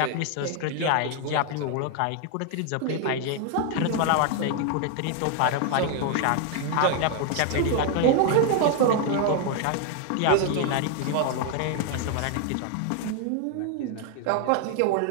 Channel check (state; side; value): different; both; correlation 0.00